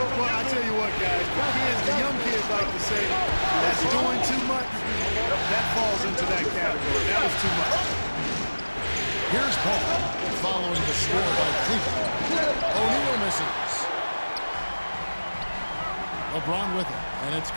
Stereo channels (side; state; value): both; inverted; correlation -1.00